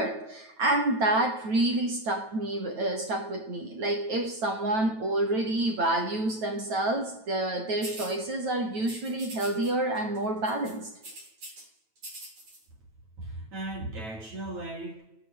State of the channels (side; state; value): left; late; 9.1 ms